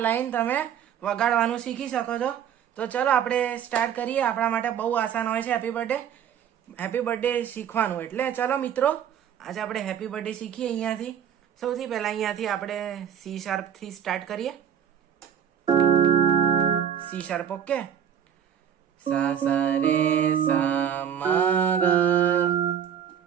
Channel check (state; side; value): quieter; left; 9.0 dB